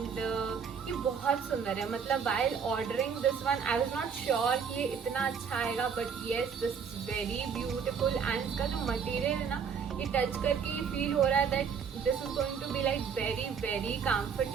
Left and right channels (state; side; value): quieter; left; 6.6 dB